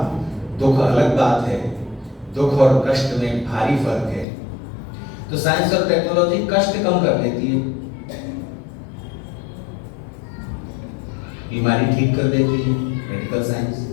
दुख अलग बात है, दुख और कष्ट में भारी फर्क है। तो साइंस और टेक्नोलॉजी कष्ट कम कर देती है, बीमारी ठीक कर देती है, मेडिकल साइंस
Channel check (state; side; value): drops out; right; at 4.2 s